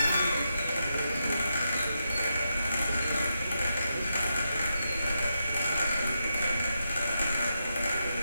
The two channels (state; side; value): inverted; both; correlation -0.85